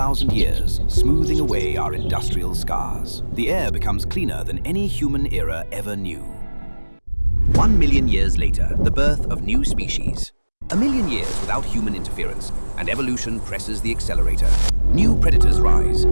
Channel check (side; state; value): both; inverted; correlation -1.00